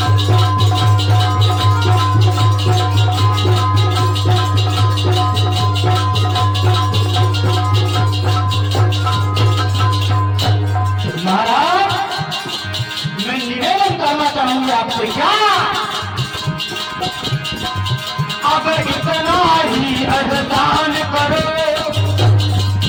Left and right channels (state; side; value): identical; both; correlation 1.00